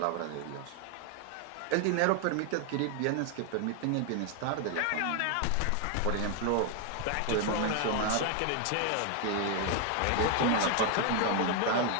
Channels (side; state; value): both; different; correlation 0.00